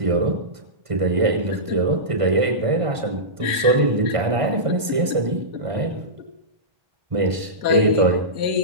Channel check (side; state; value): left; late; 1.5 ms